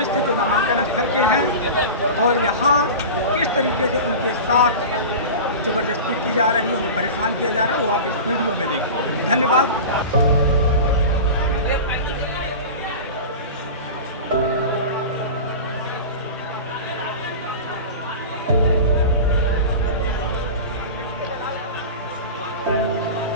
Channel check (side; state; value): both; inverted; correlation -0.30